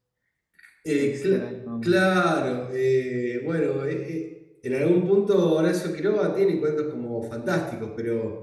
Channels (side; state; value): both; identical; correlation 1.00